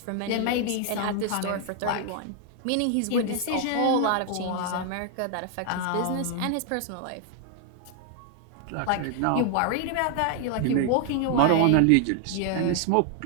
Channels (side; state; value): both; different; correlation 0.00